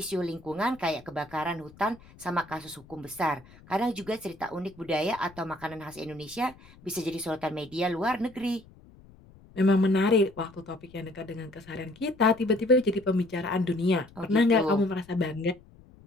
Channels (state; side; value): noise; left; rumble, 24 dB below the sound